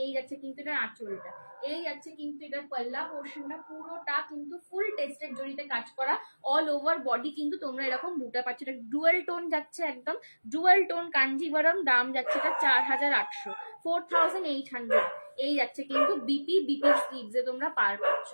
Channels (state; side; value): inverted; both; correlation -1.00